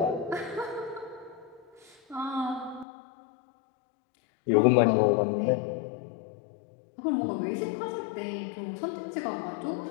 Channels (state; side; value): drops out; right; at 2.9 s